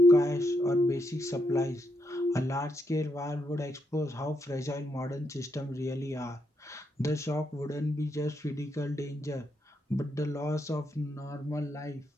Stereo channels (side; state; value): both; normal; correlation 0.80